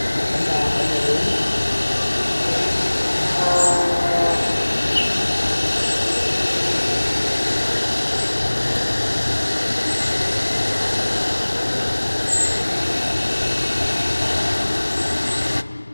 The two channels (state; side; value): inverted; both; correlation -1.00